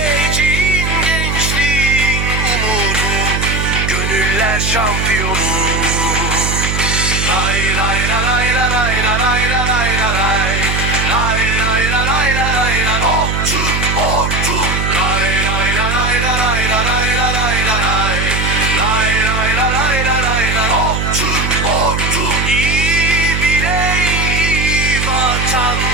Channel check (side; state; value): right; noise; hum, 1 dB below the sound